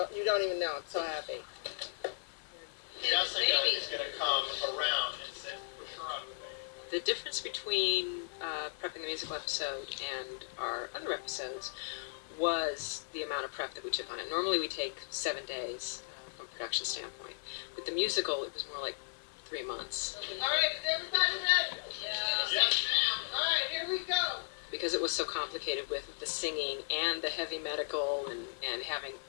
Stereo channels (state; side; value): silent; right; 54 dB below the other